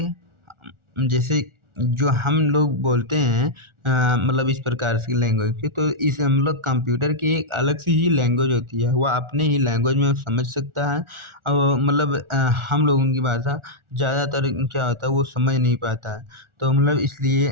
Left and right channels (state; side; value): late; left; 1.4 ms